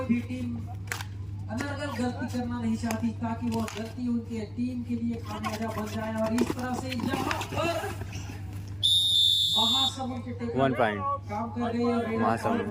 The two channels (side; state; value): right; noise; hum, 28 dB below the sound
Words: भी टीम अनर्गल गलती करना नहीं चाहती ताकि वो गलती उनके टीम के लिए खामियाजा बन जाए और इस तरह से यहाँ पर महासमुंद के टेकल 1 पॉइंट काम कर रही है। महासमुंद